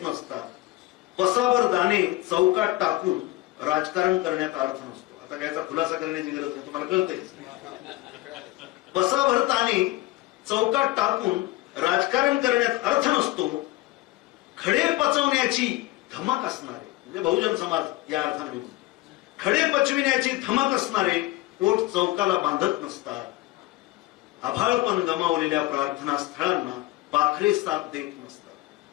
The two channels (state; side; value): quieter; right; 18.2 dB